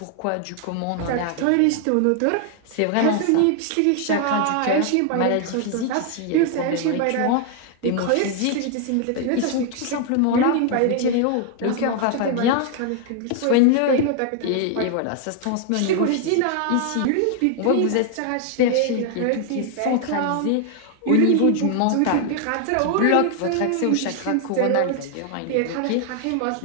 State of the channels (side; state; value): both; different; correlation 0.00